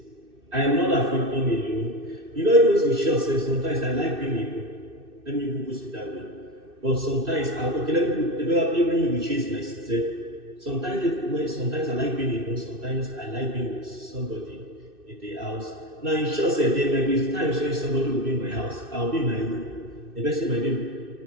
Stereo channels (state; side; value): late; left; 2.6 ms